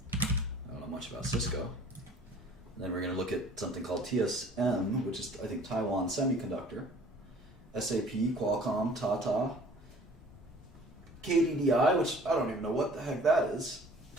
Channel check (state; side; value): normal; both; correlation 0.51